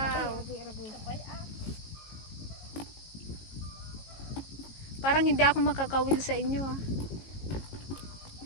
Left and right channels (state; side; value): late; right; 18 ms